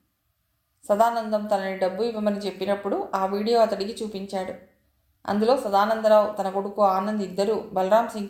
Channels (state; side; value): identical; both; correlation 1.00